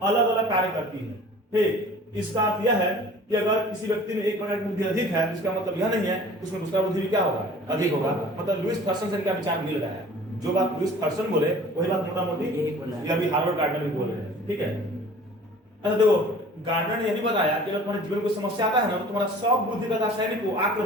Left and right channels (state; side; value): normal; both; correlation 0.47